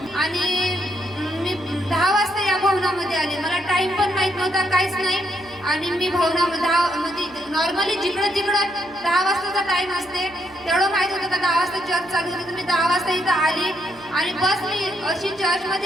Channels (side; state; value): right; noise; hum, 25 dB below the sound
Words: आणि मी 10 वाजता या भवनामध्ये आले. मला टाइम पण माहित नव्हता, काहीच नाही. आणि मी भवनामध्ये नॉर्मली जिकडं 10 वाजताचा टाइम असते तेवढं माहित होतं का 10 वाजता चर्च चालू झाली. तर मी 10 वाजता इथं आली आणि बस मी अशी